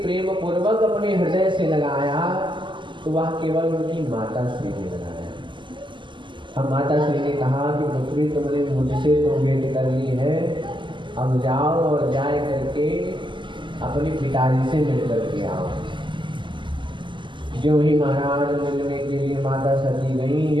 प्रेम पूर्वक अपने हृदय से लगाया तो वह केवल उनकी माता श्री ने लगाया। अब माता श्री ने कहा कि पुत्री तुमने मुझसे तो भेंट कर ली है, अब जाओ और जाए करके अपने पिताजी से मिल करके आओ। जो ही महाराज मिलने के लिए माता सती गई,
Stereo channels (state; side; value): late; left; 0.24 ms